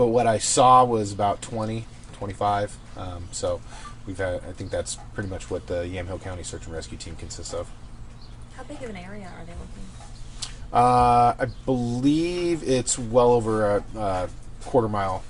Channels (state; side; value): identical; both; correlation 1.00